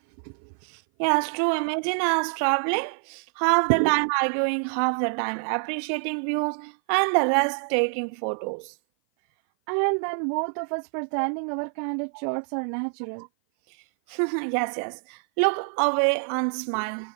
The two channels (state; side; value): silent; left; 57 dB below the other